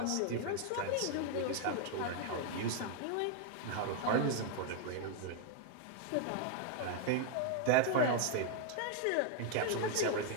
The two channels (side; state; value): both; different; correlation 0.00